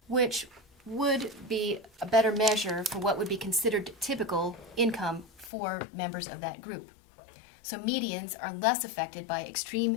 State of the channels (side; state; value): right; drops out; at 5.5 s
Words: which would be a better measure for what would be considered typical income for members of that group. So medians are less affected by